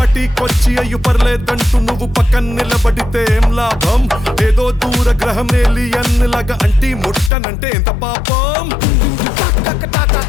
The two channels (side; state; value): right; drops out; at 7.3 s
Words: అయ్యు పర్లేదంటూ నువ్వు పక్కన నిలబడితే ఏం లాభం? ఏదో దూర గ్రహం ఏలియన్ లాగా అంటి ముట్టనంటే ఎంత పాపం?